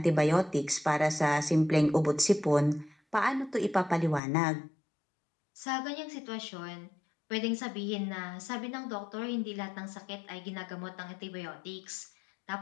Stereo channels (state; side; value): drops out; right; at 4.2 s